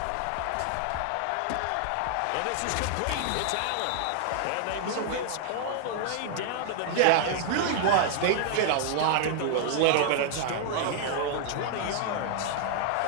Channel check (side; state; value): both; different; correlation 0.00